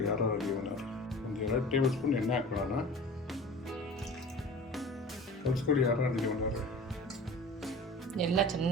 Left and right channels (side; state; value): both; normal; correlation 0.39